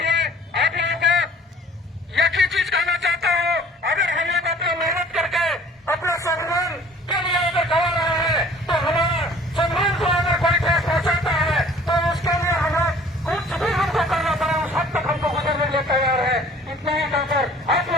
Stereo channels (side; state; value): both; normal; correlation 0.51